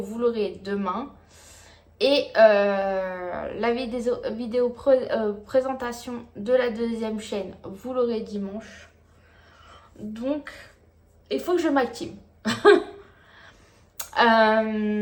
l'aurez demain. Et la vidéo présentation de la deuxième chaîne, vous l'aurez dimanche. Donc, il faut que je m'active.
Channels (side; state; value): both; identical; correlation 1.00